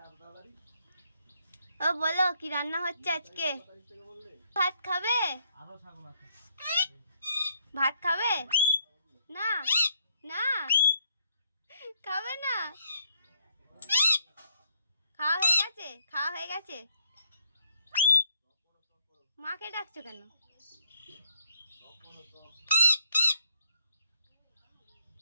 ও বলো কি রান্না হচ্ছে আজকে? ভাত খাবে? ভাত খাবে না? না খাবে না? খাওয়া হয়ে গেছে? খাওয়া হয়ে গেছে? মাকে ডাকছো কেন?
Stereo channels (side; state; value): both; inverted; correlation -0.71